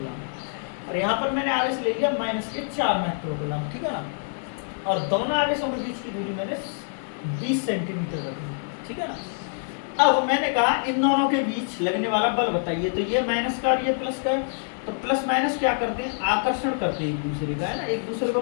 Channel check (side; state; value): right; silent; digital silence